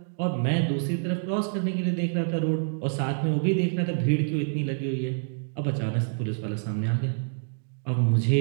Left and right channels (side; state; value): left; silent; digital silence